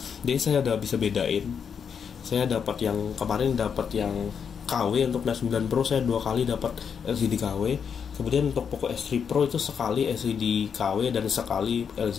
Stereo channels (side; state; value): right; quieter; 7.0 dB